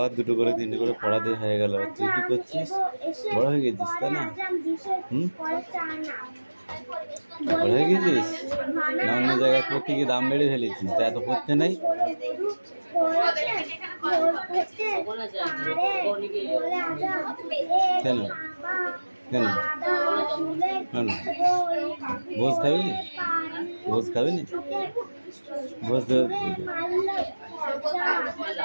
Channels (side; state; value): both; inverted; correlation -1.00